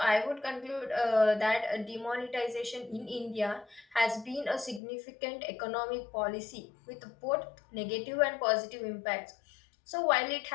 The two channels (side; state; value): right; drops out; at 4.8 s